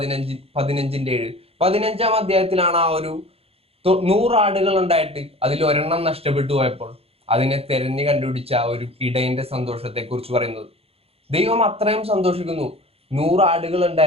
15-ാം അധ്യായത്തിലാണ് ആ ഒരു 100 ആടുകൾ ഉണ്ടായിട്ട് അതിൽ ഒരെണ്ണം നഷ്ടപ്പെട്ടു പോയപ്പോൾ അതിനെ തെരഞ്ഞു കണ്ടുപിടിച്ച ആ ഒരു ഇടയന്റെ സന്തോഷത്തെ കുറിച്ച് പറയുന്നത്. ദൈവം അത്രയും സന്തോഷിക്കുന്നു. 100 ആടുകൾ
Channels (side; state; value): left; late; 0.29 ms